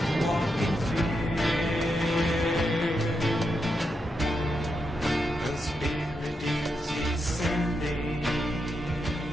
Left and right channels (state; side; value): normal; both; correlation 0.84